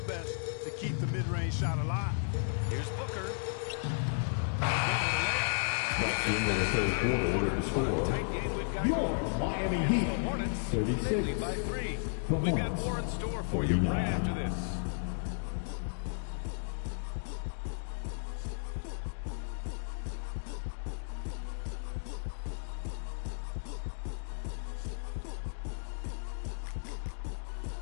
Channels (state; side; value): silent; right; digital silence